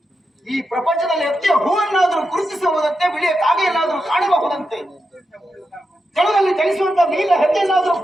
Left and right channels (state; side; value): normal; both; correlation 0.87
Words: ಈ ಪ್ರಪಂಚದಲ್ಲಿ ಎತ್ತಿಯ ಹೂವನ್ನಾದರೂ ಗುರುತಿಸಬಹುದಂತೆ, ಬಿಳಿಯ ಕಾಗೆಯನ್ನಾದರೂ ಕಾಣಬಹುದಂತೆ, ಜಲದಲ್ಲಿ ಚಲಿಸುವಂತ ನೀಲ ಹೆಜ್ಜೆಯನ್ನಾದರೂ